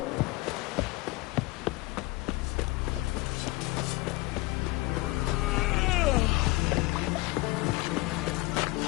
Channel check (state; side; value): quieter; right; 22.1 dB